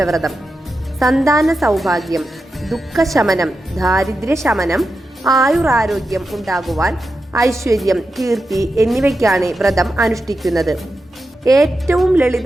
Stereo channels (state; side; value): normal; both; correlation 0.90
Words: സന്താന സൗഭാഗ്യം, ദുഃഖശമനം, ദാരിദ്ര്യശമനം, ആയുരാരോഗ്യം ഉണ്ടാകുവാൻ, ഐശ്വര്യം, കീർത്തി എന്നിവയ്ക്കാണ് വ്രതം അനുഷ്ഠിക്കുന്നത്. ഏറ്റവും